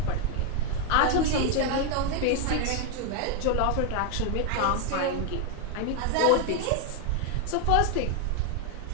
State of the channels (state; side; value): different; both; correlation 0.01